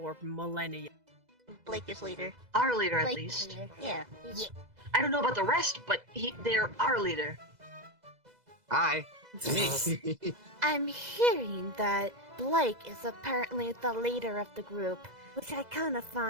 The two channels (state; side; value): late; left; 2.0 ms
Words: millennia. Blake is leader. Our leader, at Blake least. is leader. Yeah. I don't know about the rest, but they're our leader. Hi. I'm hearing that Blake is apparently the leader of the group, which I kind of